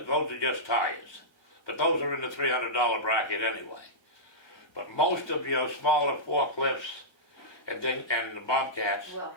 are just tires. But those are in the $300 bracket anyway. But most of your smaller forklifts and the Bobcats Will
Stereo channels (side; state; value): right; late; 1.3 ms